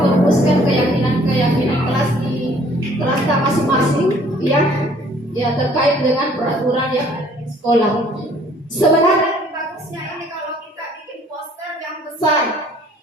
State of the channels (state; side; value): normal; both; correlation 0.58